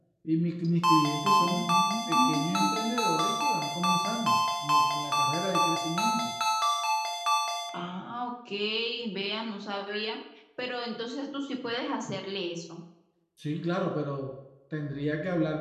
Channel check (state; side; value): identical; both; correlation 1.00